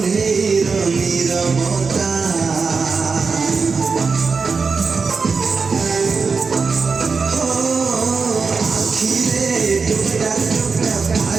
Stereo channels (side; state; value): left; quieter; 4.9 dB